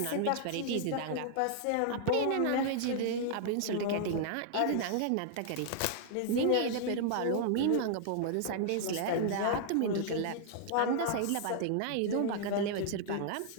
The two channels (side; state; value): both; different; correlation -0.01